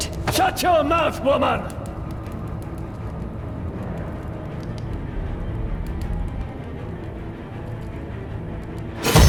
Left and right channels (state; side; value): identical; both; correlation 1.00